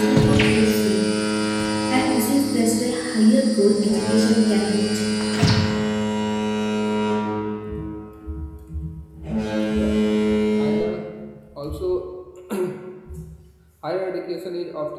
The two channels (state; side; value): identical; both; correlation 1.00